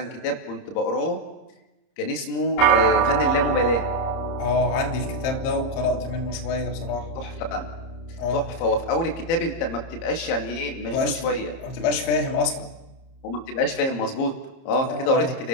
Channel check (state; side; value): late; right; 30 ms